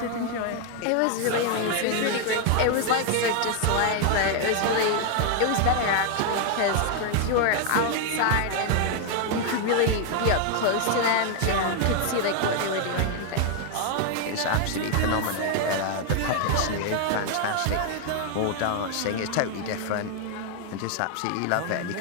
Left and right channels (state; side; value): different; both; correlation 0.00